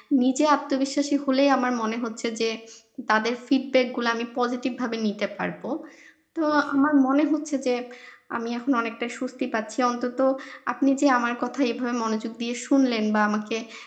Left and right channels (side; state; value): both; identical; correlation 1.00